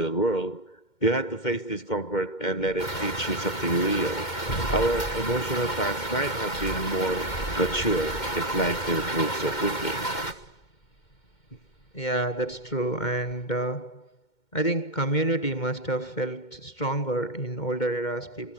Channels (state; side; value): late; right; 2.2 ms